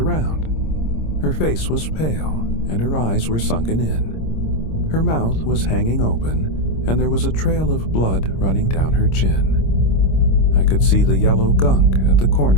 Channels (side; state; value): right; late; 26 ms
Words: Her face was pale, and her eyes were sunken in. Her mouth was hanging open, and there was a trail of blood running down her chin. I could see the yellow gunk at the